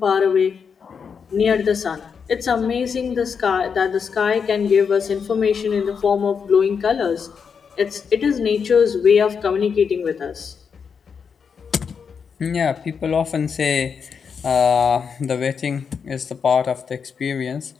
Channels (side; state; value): right; quieter; 6.3 dB